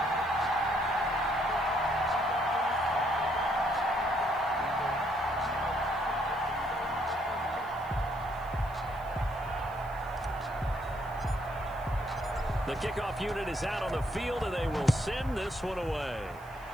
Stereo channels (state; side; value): noise; left; hiss, 26 dB below the sound